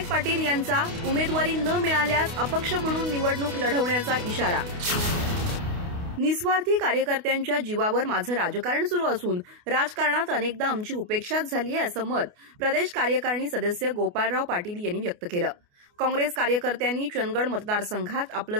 पाटील यांचा उमेदवारी न मिळाल्यास अपक्ष म्हणून निवडणूक लढवण्याचा इशारा. निस्वार्थी कार्यकर्त्यांच्या जीवावर माझं राजकारण सुरू असून राजकारणात अनेकदा आमची उपेक्षाच झाली आहे, असं मत प्रदेश कार्यकारिणी सदस्य गोपाळराव पाटील यांनी व्यक्त केलं. काँग्रेस कार्यकर्त्यांनी चंदगड मतदारसंघात आपलं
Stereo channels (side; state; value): left; late; 28 ms